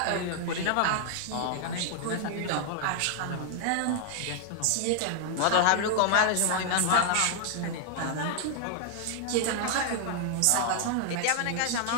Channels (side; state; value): both; different; correlation 0.00